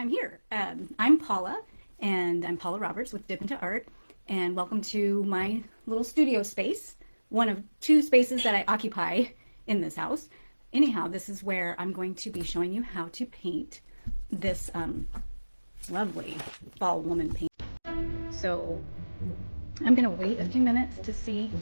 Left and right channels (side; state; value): both; inverted; correlation -1.00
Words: here. I'm Paula, and I'm Paula Roberts with Dip into Art, and welcome to my little studio space, one of two spaces that I occupy in this house. Anyhow, this is where I'm going to be showing you how to paint this lovely fall woman paint. So I'm going to wait a few minutes to see